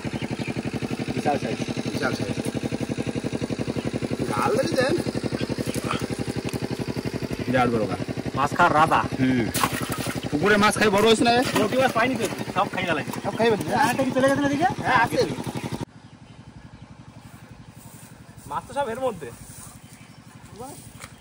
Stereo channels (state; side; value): identical; both; correlation 1.00